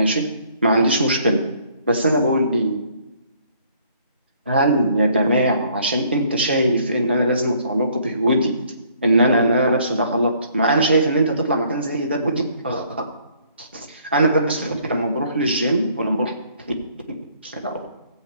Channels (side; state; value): both; inverted; correlation -0.62